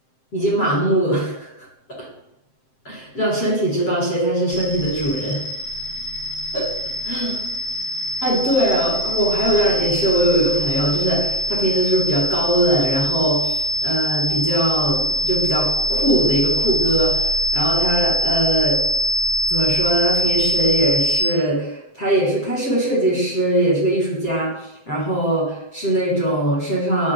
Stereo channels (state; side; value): late; right; 7.7 ms